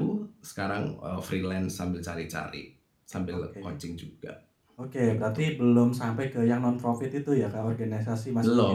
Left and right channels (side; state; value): both; identical; correlation 1.00